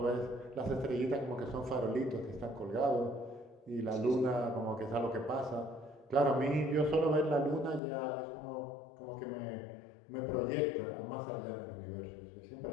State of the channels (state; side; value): drops out; right; at 7.8 s